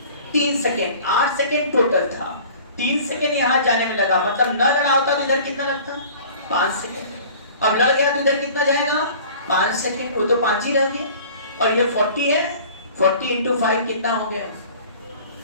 3 सेकेंड। 8 सेकेंड टोटल था, 3 सेकेंड यहां जाने में लगा, मतलब न लड़ा होता तो इधर कितना लगता? 5 सेकेंड। अब लड़ गया तो इधर कितना जाएगा? 5 सेकेंड, वो तो 5 ही रह गए। और ये 40 है, 40 इंटू 5 कितना हो गया?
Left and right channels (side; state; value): both; inverted; correlation -0.46